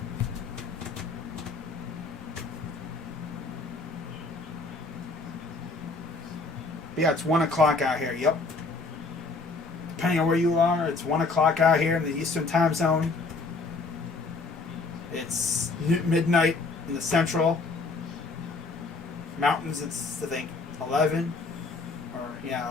But yeah, it's 1 o'clock out here. Yep. Depending on where you are, it's 1 o'clock out here in the Eastern time zone. It's midnight in the Central. Mountains, it's, I think, 11.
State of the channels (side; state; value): right; quieter; 3.8 dB